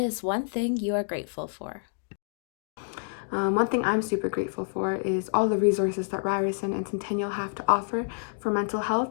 one thing you are grateful for? One thing I'm super grateful for is all the resources that Ryerson and Centennial have to offer for mental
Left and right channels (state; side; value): silent; right; digital silence